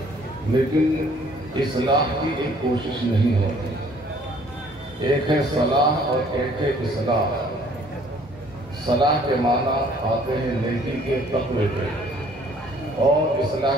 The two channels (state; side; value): normal; both; correlation 0.58